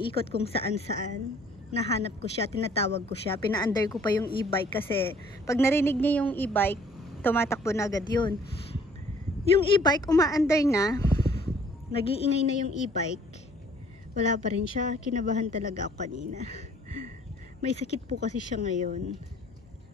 kung saan-saan. Nahanap ko siya, tinatawag ko siya. Pina-under ko pa yung e-bike kasi pag narinig niya yung e-bike, tumatakbo na agad yun. Yung e-bike, uma-under na. Nag-iingay na yung e-bike. Wala pa rin siya. Kinabahan talaga ako kanina. May sakit po kasi siya ngayon.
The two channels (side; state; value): both; normal; correlation 0.57